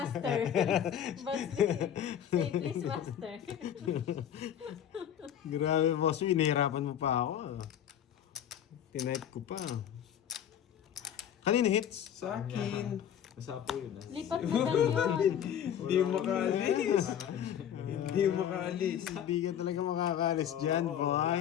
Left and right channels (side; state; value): right; quieter; 9.7 dB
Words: Boss B, say please, master. Grabe, boss. Inahirapan mo pa ako. Tinype ko pa. Kanino hits? Sa akin. Nasapo yun ah. Lipat na daw yun. Hindi makaalis. Hindi makaalis. Hindi ka talaga makakalis dyan, Oo, boy.